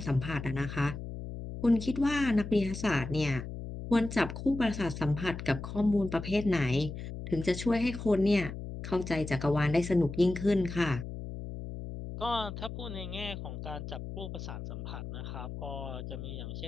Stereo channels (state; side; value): noise; left; hum, 8 dB below the sound